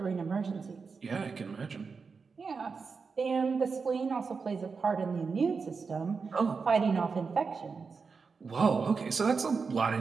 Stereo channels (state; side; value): quieter; left; 5.0 dB